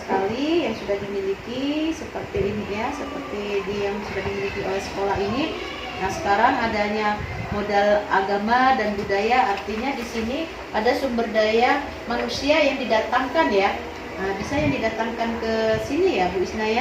yang sudah dimiliki seperti ini ya, seperti yang sudah dimiliki oleh sekolah ini. Nah, sekarang adanya modal agama dan budaya, artinya di sini ada sumber daya manusia yang didatangkan ya. Nah, bisa yang didatangkan ke sini ya Bu Isna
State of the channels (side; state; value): both; identical; correlation 1.00